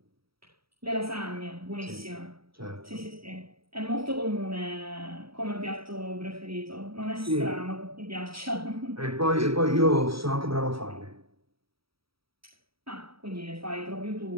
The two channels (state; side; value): late; left; 0.75 ms